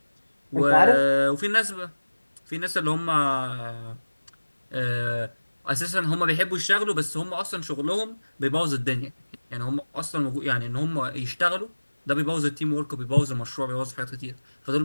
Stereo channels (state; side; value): inverted; both; correlation -1.00